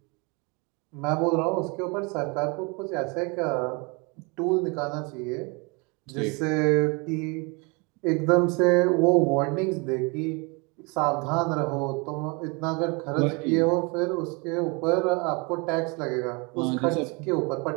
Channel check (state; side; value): quieter; left; 30.0 dB